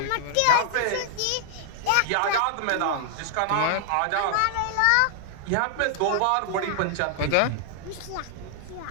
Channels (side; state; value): both; different; correlation 0.00